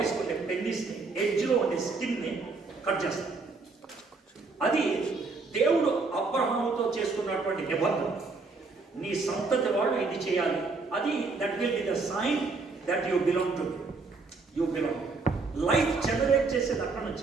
ఉండే పెన్నిస్ని, ఎడ్జ్లో ఉండే స్కిన్ని కట్ చేస్తారు. అది దేవుడు అబ్రహాముతో చేసుకున్నటువంటి నిబంధన. నీ సంతతి వాళ్ళు ఇది చేయాలి, అది that will be the sign that you belong to, you belong. Life generate చేసేది అక్కడ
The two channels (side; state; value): left; quieter; 4.0 dB